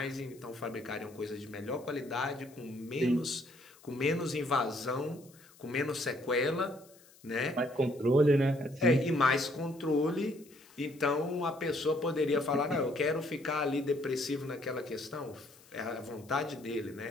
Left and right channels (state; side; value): noise; left; hiss, 26 dB below the sound